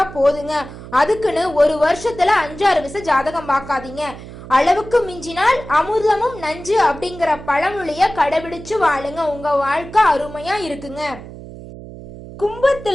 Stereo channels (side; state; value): right; noise; hum, 14 dB below the sound